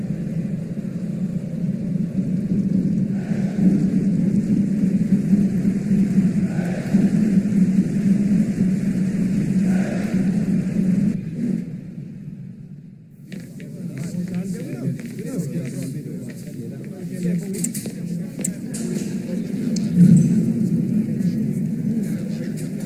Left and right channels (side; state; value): both; identical; correlation 1.00